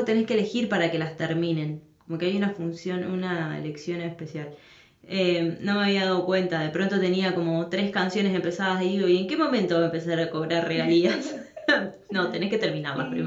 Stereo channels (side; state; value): both; identical; correlation 1.00